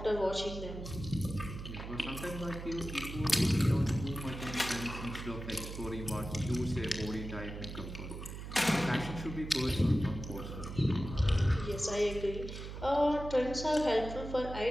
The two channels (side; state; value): right; noise; hum, 9 dB below the sound